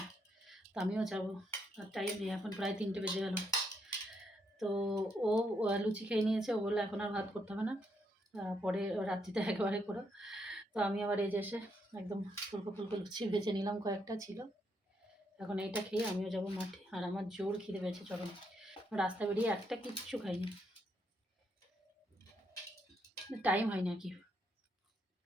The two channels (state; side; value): normal; both; correlation 0.77